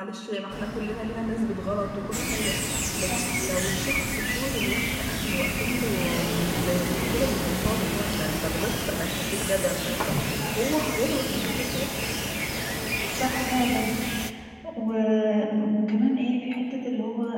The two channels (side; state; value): both; identical; correlation 1.00